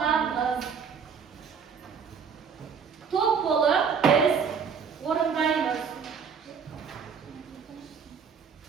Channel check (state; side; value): quieter; left; 6.4 dB